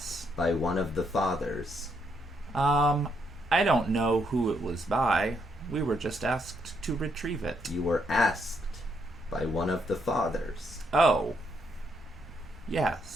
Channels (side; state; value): both; normal; correlation 0.75